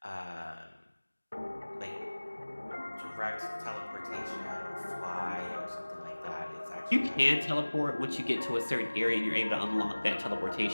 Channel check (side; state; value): both; inverted; correlation -1.00